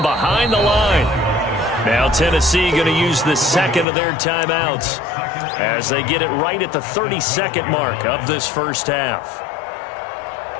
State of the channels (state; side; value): drops out; right; at 3.9 s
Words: behind the line. Now Tennessee going to use the second of their timeouts, as they get it right at the 30-second mark of this first half.